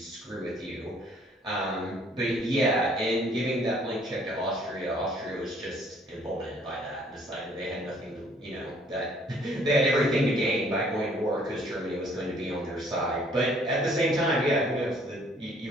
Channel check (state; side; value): normal; both; correlation 0.61